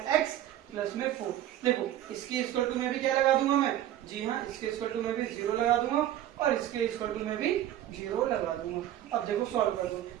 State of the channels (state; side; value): quieter; left; 12.5 dB